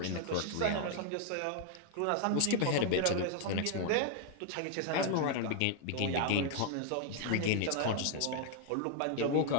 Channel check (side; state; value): both; different; correlation 0.00